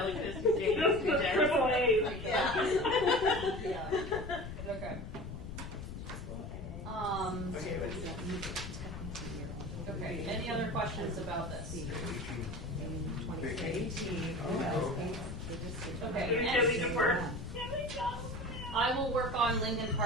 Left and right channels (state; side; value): noise; left; rumble, 9 dB below the sound